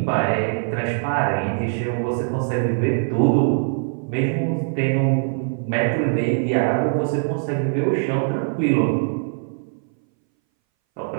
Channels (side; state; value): left; silent; 61 dB below the other